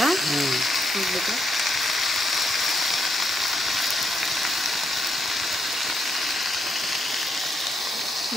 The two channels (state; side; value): normal; both; correlation 0.78